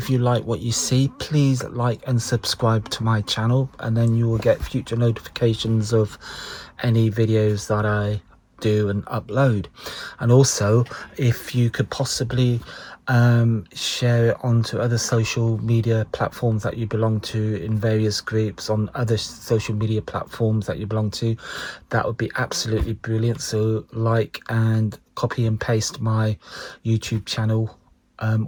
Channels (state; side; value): identical; both; correlation 1.00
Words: you like what you see, please like and subscribe to my channel, and then you will get future notifications of any videos that I do and upload. And also, if you could possibly share it onto other social media platforms that you belong to, in various groups on other social media platforms that you belong to, that would be absolutely brilliant. So like and copy and paste my YouTube channel